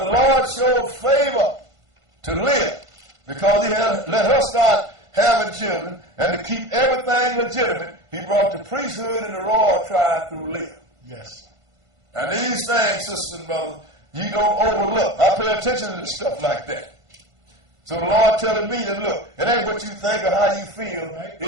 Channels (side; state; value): left; late; 1.5 ms